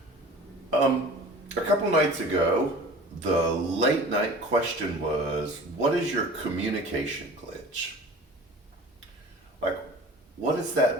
A couple nights ago, the late night question was, what is your communication glitch? Like, what is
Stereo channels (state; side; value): normal; both; correlation 0.42